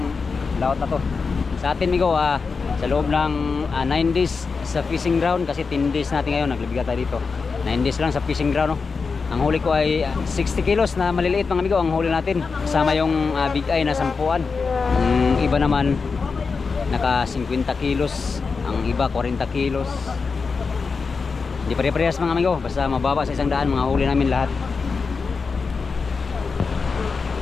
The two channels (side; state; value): right; quieter; 4.8 dB